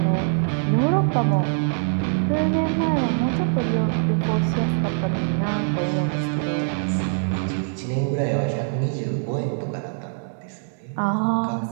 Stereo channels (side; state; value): left; silent; digital silence